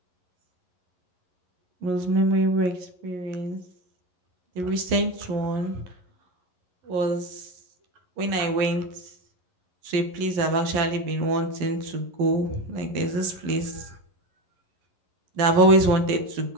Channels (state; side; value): late; left; 11 ms